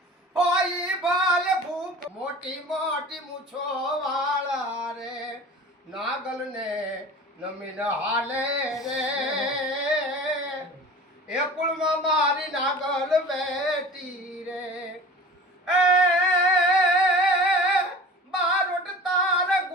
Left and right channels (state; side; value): normal; both; correlation 0.39